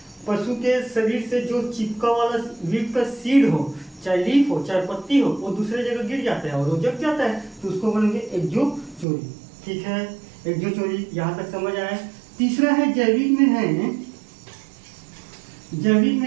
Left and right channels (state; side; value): drops out; left; at 9.1 s